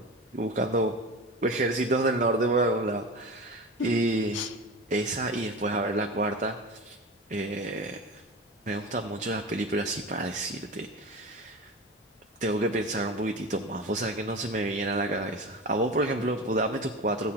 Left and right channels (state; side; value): normal; both; correlation 0.30